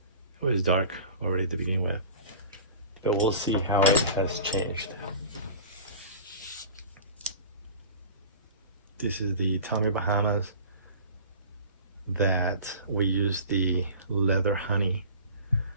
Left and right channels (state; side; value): inverted; both; correlation -0.38